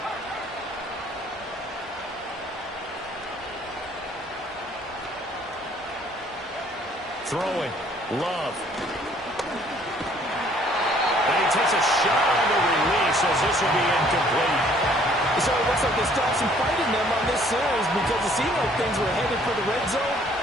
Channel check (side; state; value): both; normal; correlation 0.60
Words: Throwing. Love. And he takes a shot on the release as this will be incomplete. So it looks like they still have some fight in them on this series because it seemed like things were headed for the red zone.